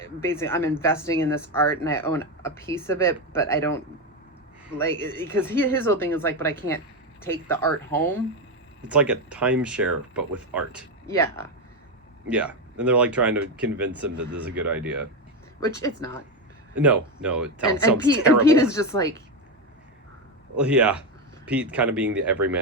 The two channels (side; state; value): both; normal; correlation 0.11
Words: basically I'm investing in this art and I own a piece of it, but I don't like because his whole thing is like, but I can't take the art home. It's like a timeshare, but with art. Yeah. Yeah, and they're like trying to convince him that this is a good idea. Which it's not. No, it sounds Pete, terrible. And Pete is just like... Well, yeah, Pete kind of being the